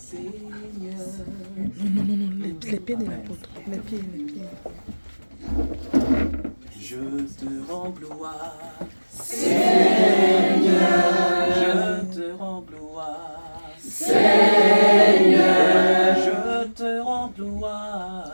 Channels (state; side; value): inverted; both; correlation -1.00